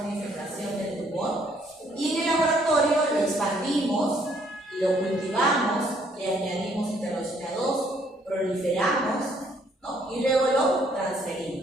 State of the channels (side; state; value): both; normal; correlation 0.66